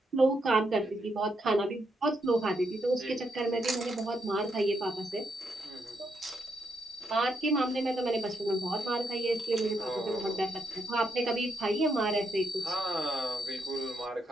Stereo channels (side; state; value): both; normal; correlation 0.79